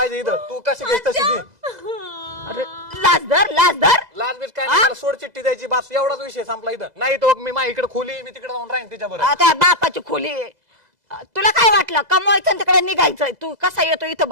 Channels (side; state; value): left; late; 2.0 ms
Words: इथं तू कशी घेस तशी घे अरे लाज धर लाज बीज काय नाही मला सोड चिठ्ठी द्यायची बस एवढाच विषय संपला इथं नाही तो मी माझ्या इकडे खोली मी तिकडे जाऊन राहीन तिच्याबरोबर आता बापाची खोली आहे. तुला काय वाटलं कमवायचं तिकडे निघायचं तू कसा येतो इथं